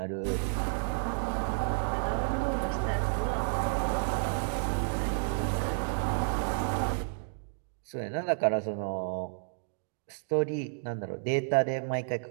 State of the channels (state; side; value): silent; left; digital silence